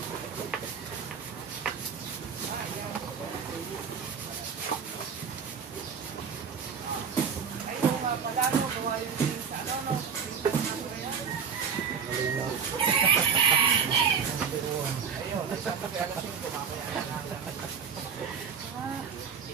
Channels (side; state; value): left; quieter; 6.6 dB